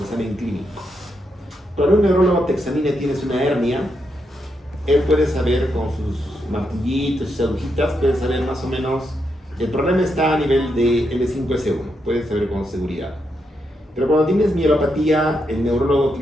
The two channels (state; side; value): normal; both; correlation 0.82